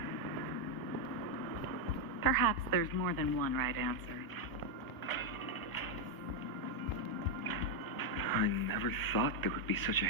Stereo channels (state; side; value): late; right; 1.6 ms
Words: Perhaps there's more than one right answer. I never thought there would be such a